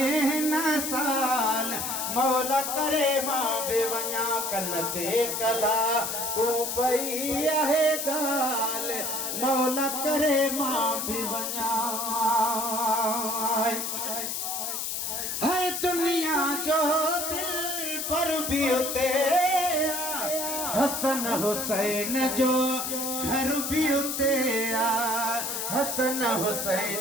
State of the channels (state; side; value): noise; left; hiss, 3 dB below the sound